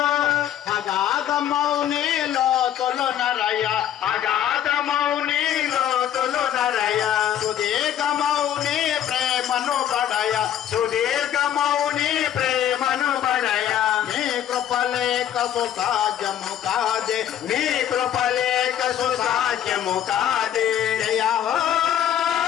అగాధమౌని లోతులు నరయ అగాధమౌని లోతులు నరయ సుదీర్ఘమౌని ప్రేమను బడయ సుదీర్ఘమౌని ప్రేమను బడయ నీ కృపలేక సుసాధ్యము కాదే నీ కృపలేక సుసాధ్యము కాదే జయ హో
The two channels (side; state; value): right; quieter; 10.6 dB